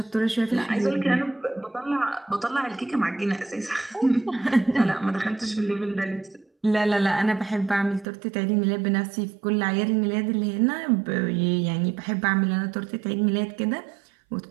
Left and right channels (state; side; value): drops out; left; at 8.1 s